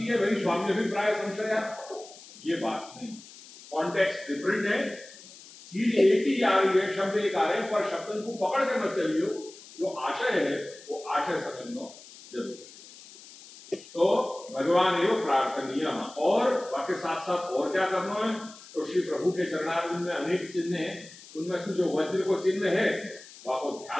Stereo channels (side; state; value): left; noise; hiss, 19 dB below the sound